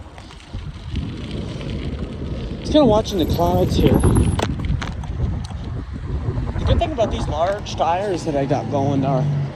Just kind of watching the clouds here. The good thing about these large tires that I got going are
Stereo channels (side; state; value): both; identical; correlation 1.00